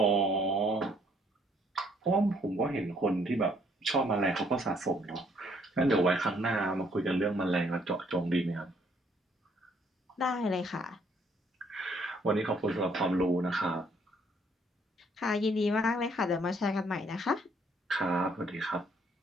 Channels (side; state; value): both; normal; correlation 0.65